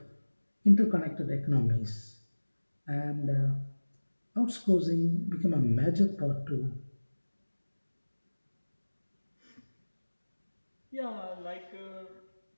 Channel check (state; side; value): inverted; both; correlation -1.00